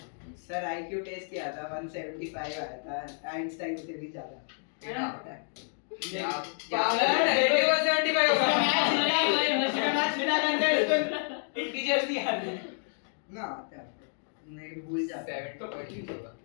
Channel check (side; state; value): right; silent; 58 dB below the other